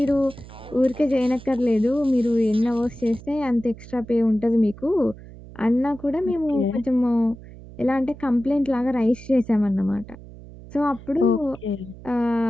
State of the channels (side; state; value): right; noise; hum, 17 dB below the sound